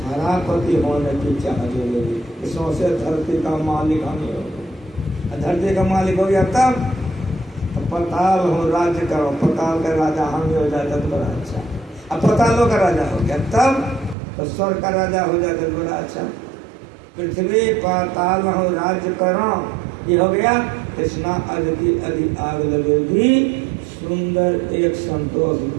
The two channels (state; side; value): drops out; left; at 14.2 s